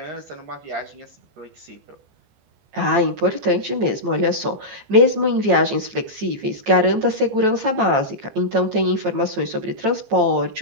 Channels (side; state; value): left; late; 15 ms